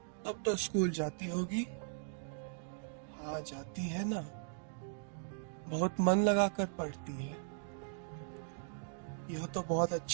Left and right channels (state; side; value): silent; left; digital silence